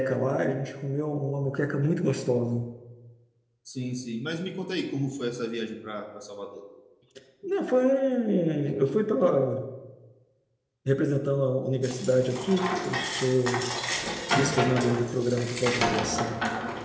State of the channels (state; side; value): identical; both; correlation 1.00